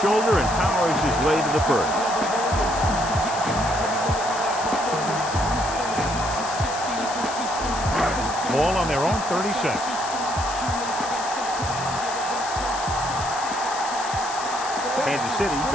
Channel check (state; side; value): noise; left; hiss, 10 dB below the sound